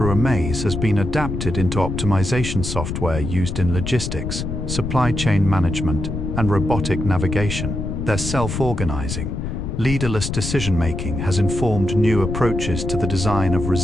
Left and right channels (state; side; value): noise; left; rumble, 4 dB below the sound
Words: a maze has been adapted into optimization software used in logistics, supply chain management, and robotic navigation. Their self-organizing, leaderless decision-making has informed new approaches to the design of